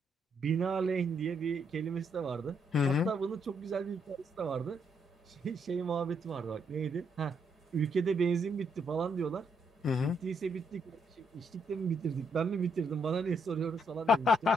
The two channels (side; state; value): both; normal; correlation 0.75